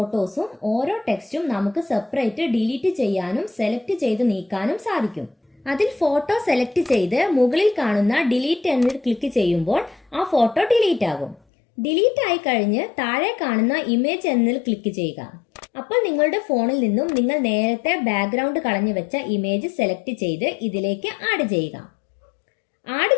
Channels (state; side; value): drops out; right; at 11.4 s